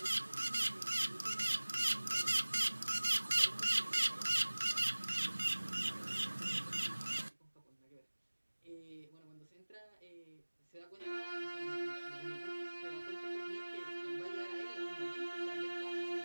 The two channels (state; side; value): inverted; both; correlation -1.00